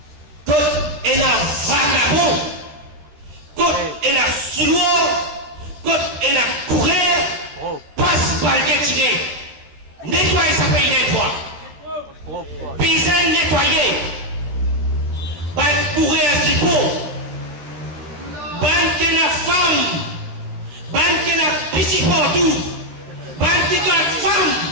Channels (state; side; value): late; left; 14 ms